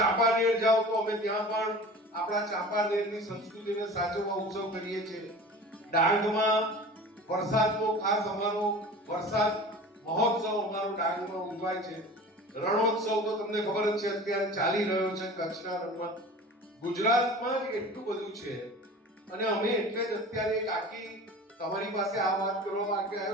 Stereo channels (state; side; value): normal; both; correlation 0.39